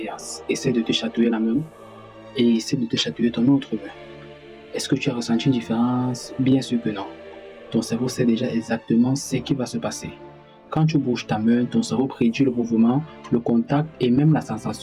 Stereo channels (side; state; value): both; identical; correlation 1.00